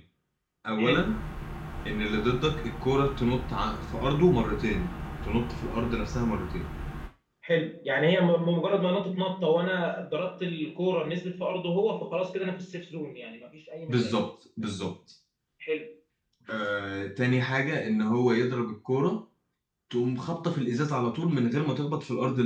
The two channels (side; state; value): both; identical; correlation 1.00